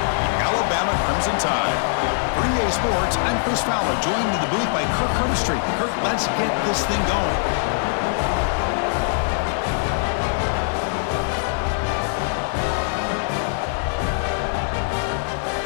the Alabama Crimson Tide. For EA Sports, I'm Chris Fowler, joined in the booth by Kirk Hermstreet. Kirk, let's get this thing going.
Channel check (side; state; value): right; silent; digital silence